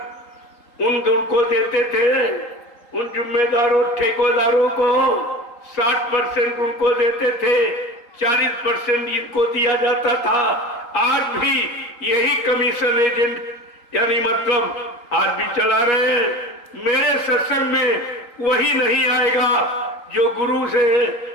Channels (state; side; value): late; right; 3.8 ms